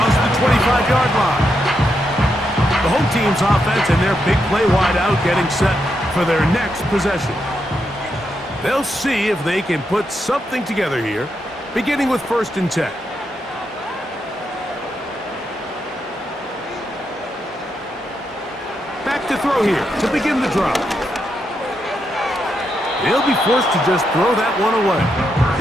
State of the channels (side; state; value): both; normal; correlation 0.82